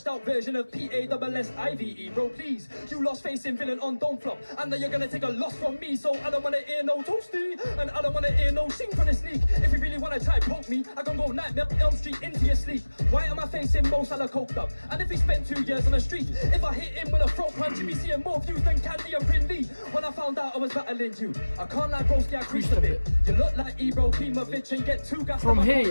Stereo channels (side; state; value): both; inverted; correlation -1.00